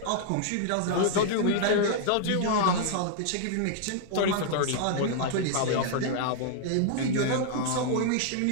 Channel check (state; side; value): different; both; correlation -0.01